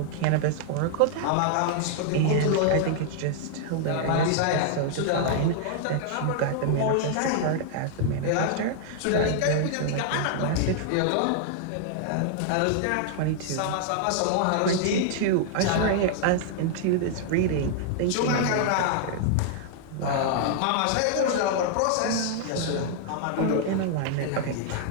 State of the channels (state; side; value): different; both; correlation -0.01